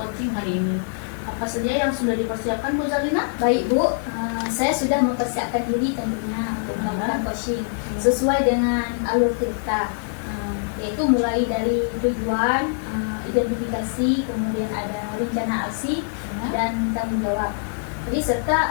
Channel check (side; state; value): right; silent; digital silence